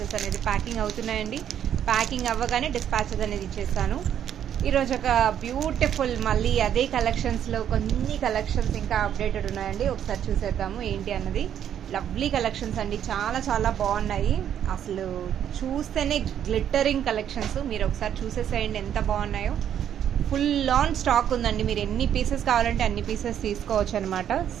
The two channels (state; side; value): quieter; left; 9.7 dB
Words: అనేది ప్యాకింగ్ అవుతున్నాయండి. ప్యాకింగ్ అవ్వగానే డిస్పాచెస్ అనేది ఇచ్చేస్తాను. ఈరోజు ఒక బ్యూటిఫుల్ మళ్ళీ అదే కలెక్షన్స్లో కొన్ని కలెక్షన్స్ ఇంకా అప్డేటెడ్ ఉన్నాయండి. ఒకసారి చూసేద్దాము ఏంటి అన్నది. లవ్లీ కలెక్షన్స్ అండి, చాలా చాలా బాగున్నాయి. అసలు చూస్తేనే గ్లిట్టరింగ్ కలెక్షన్స్. మీరు ఒకసారి చూసేసేయండి ఎంత బాగున్నాయో. ఫుల్ ఆన్ స్టాక్ ఉందండి. మీరు ఎన్ని పీసెస్ కావాలంటే అన్ని పీసెస్ తీసుకోవచ్చు అనమాట.